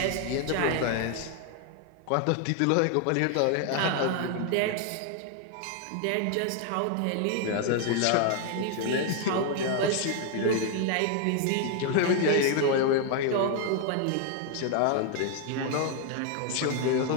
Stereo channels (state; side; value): different; both; correlation 0.00